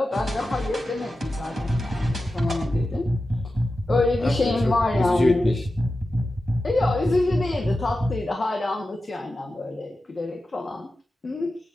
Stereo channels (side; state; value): both; normal; correlation 0.92